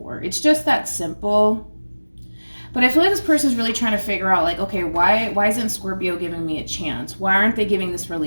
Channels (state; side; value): inverted; both; correlation -1.00